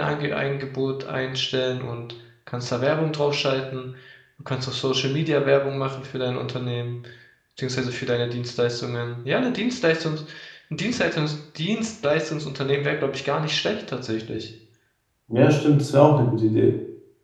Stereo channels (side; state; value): both; identical; correlation 1.00